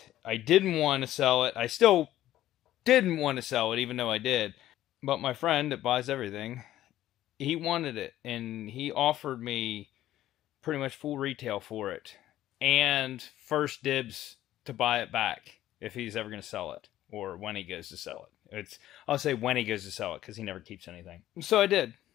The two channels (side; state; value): right; quieter; 13.6 dB